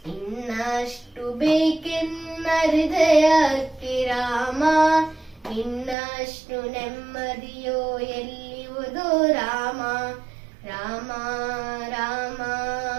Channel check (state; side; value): drops out; left; at 6.0 s